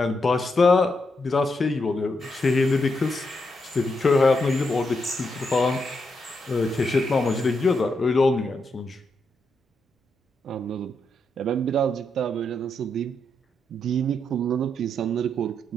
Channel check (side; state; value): both; normal; correlation 0.82